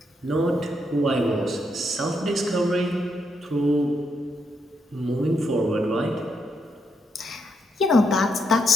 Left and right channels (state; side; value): normal; both; correlation 0.79